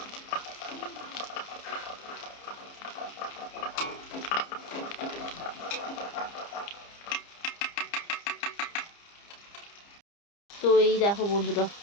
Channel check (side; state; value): right; late; 30 ms